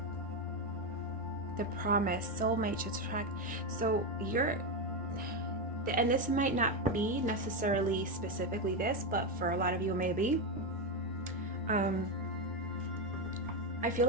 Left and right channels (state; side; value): normal; both; correlation 0.10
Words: the promise, soulmate, attract. So you're, and this might not be necessarily specifically this, but for a lot of you maybe. I feel